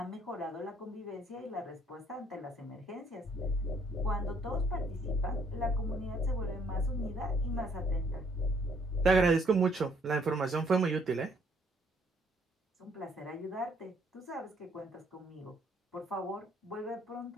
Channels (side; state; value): both; normal; correlation 0.65